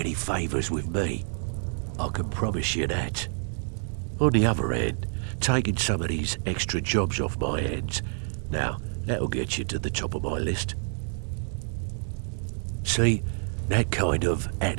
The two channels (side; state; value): left; silent; 59 dB below the other